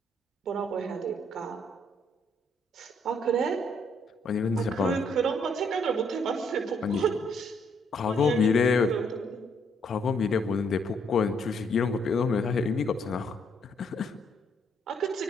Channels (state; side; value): normal; both; correlation 0.70